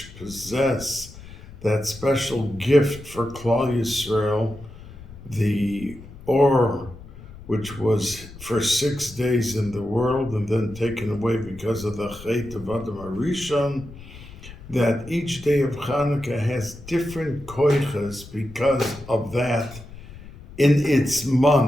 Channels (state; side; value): noise; left; rumble, 17 dB below the sound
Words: possess that special gift for Klal Yisrael, the Or, which was for 6 days in the world and then taken away because of the Chet of Adam HaRishon, that each day of Hanukkah has different koiches because of that in its